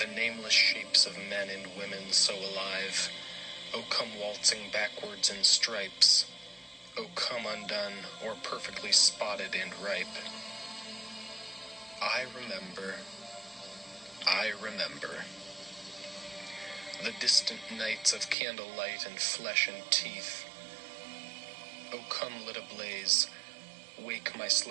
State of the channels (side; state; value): left; drops out; at 18.4 s